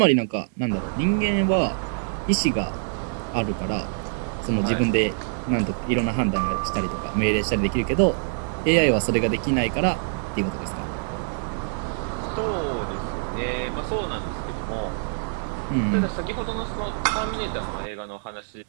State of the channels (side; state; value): left; silent; digital silence